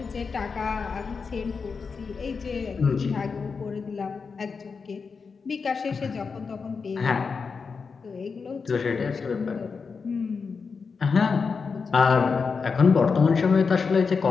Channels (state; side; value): quieter; right; 5.2 dB